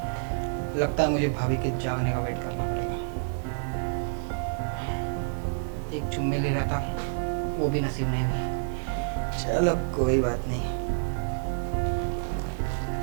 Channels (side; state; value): left; silent; digital silence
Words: लगता है मुझे भाभी के जागने का वेट करना पड़ेगा। एक चुम्मी ले रहा था, वो भी नसीब नहीं हुई। चलो कोई बात नहीं।